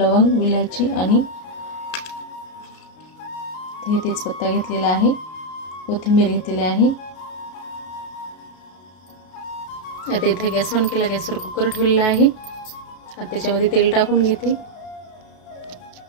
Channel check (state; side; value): late; right; 33 ms